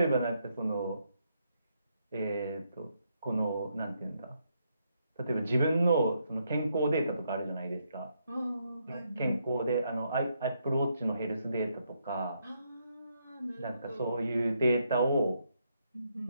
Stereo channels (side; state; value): both; inverted; correlation -0.77